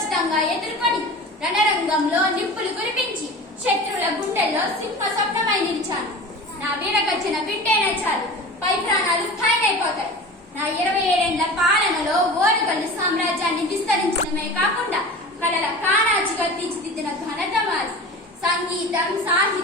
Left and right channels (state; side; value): normal; both; correlation 0.35